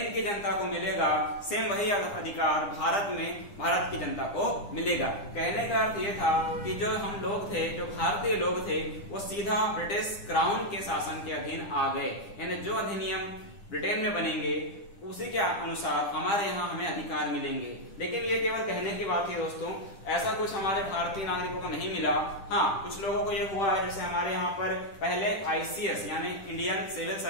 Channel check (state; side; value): late; right; 10 ms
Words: की जनता को मिलेगा सेम वही अधिकार भारत में भारत की जनता को मिलेगा। कहने का अर्थ ये था कि जो हम लोग थे, जो भारतीय लोग थे, वो सीधा ब्रिटिश क्राउन के शासन के अधीन आ गए। यानी जो अधिनियम ब्रिटेन में बनेंगे उसी के अनुसार हमारे यहाँ हमें अधिकार मिलेंगे। लेकिन ये केवल कहने की बात है दोस्तों, ऐसा कुछ हमारे भारतीय नागरिकों को नहीं मिला। हाँ, कुछ लोगों को ये हुआ है, जैसे हमारे यहाँ पर पहले ICS यानी इंडियन सिविल